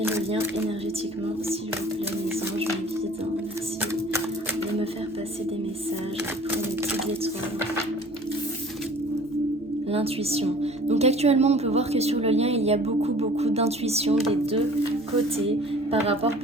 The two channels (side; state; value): both; normal; correlation 0.48